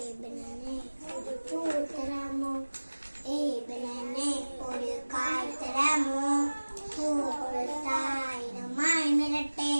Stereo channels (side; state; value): both; inverted; correlation -1.00